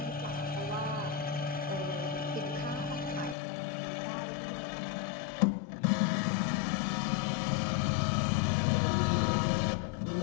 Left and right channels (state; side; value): drops out; right; at 3.4 s